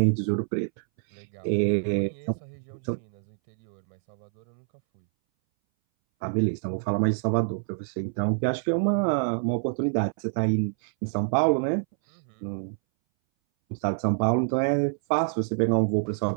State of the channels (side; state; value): left; silent; 60 dB below the other